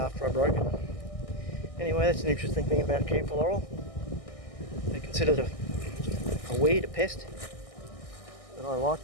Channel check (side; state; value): right; late; 1.6 ms